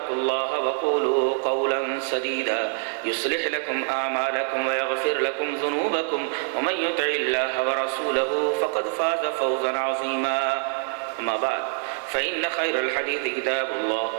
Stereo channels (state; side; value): silent; left; 55 dB below the other